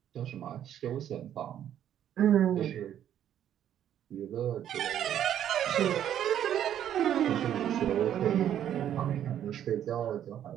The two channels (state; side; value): quieter; left; 10.4 dB